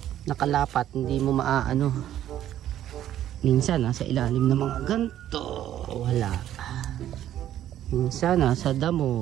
hindi mo maaano. Minsan nasa ilalim ng mga ganto, wala. Minsan nasa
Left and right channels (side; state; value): left; quieter; 11.8 dB